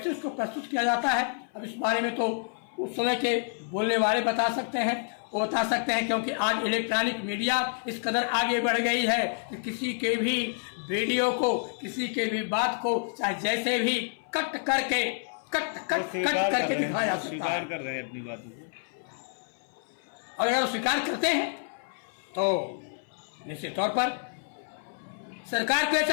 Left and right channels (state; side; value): silent; right; 58 dB below the other